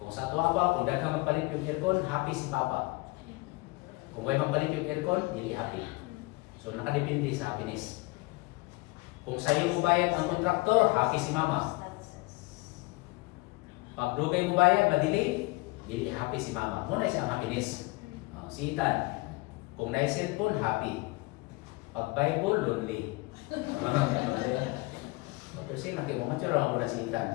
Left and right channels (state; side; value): quieter; right; 24.1 dB